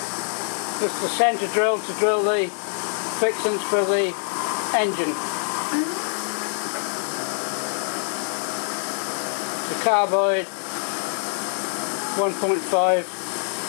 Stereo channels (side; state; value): right; silent; digital silence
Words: This is the centre drill to drill the fixings for the engine. The carbide 1.5